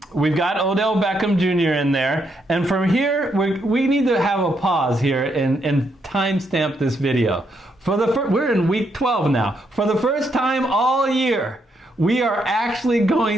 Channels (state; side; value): normal; both; correlation 0.77